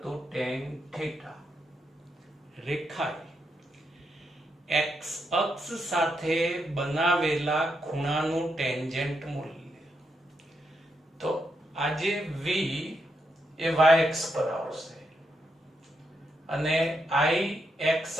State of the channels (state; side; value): normal; both; correlation 0.82